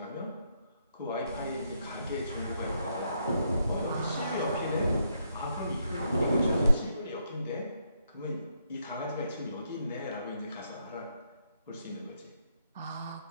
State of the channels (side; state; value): both; inverted; correlation -0.76